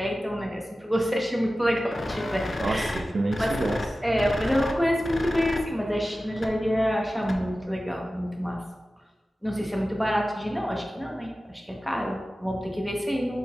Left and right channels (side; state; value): both; normal; correlation 0.95